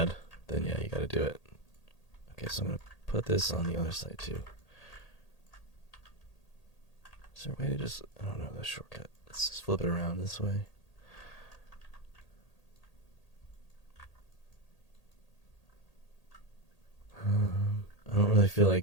then yeah, you gotta do it. Okay, so I'm gonna put this on the other side too. Is there a way to just, I don't know, the shortcut. Let's just flip it around this way. I don't really feel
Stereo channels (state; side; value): late; right; 1.8 ms